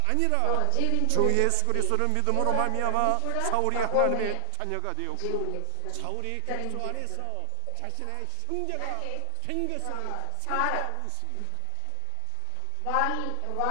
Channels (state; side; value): different; both; correlation -0.01